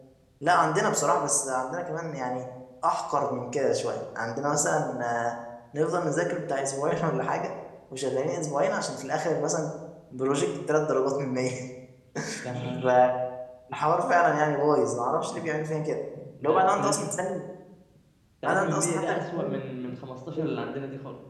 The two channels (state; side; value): identical; both; correlation 1.00